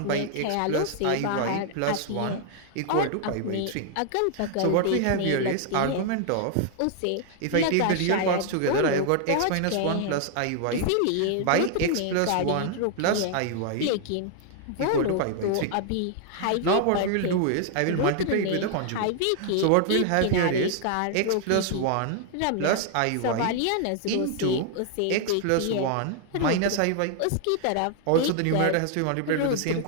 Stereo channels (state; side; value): different; both; correlation 0.00